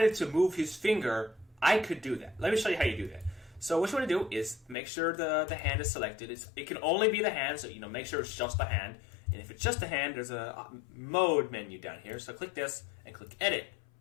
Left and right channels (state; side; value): drops out; right; at 4.8 s